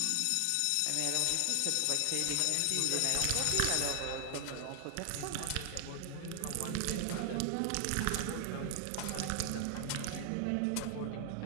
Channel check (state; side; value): different; both; correlation 0.00